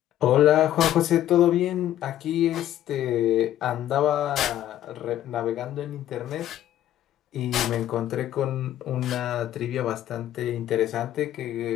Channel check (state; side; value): quieter; right; 12.3 dB